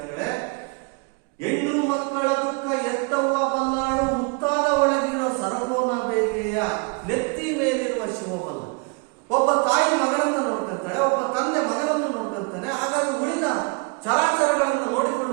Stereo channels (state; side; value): quieter; left; 31.7 dB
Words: ಹೆಣ್ಣು ಮಕ್ಕಳ ದುಃಖ ಎತ್ತವ್ವ ಬಲ್ಲಾಳು ಉತ್ತಾದ ಒಳಗಿರೋ ಸರಪೋನ ಬೇಗೆಯ ನೆತ್ತಿ ಮೇಲಿರುವ ಶಿವಬಲ್ಲ. ಒಬ್ಬ ತಾಯಿ ಮಗಳನ್ನ ನೋಡ್ಕೊಂತಾಳೆ, ಒಬ್ಬ ತಂದೆ ಮಗನನ್ನು ನೋಡ್ಕೊಂತಾನೆ. ಹಾಗಾಗಿ ಉಳಿದ ಚರಾಚರಗಳನ್ನು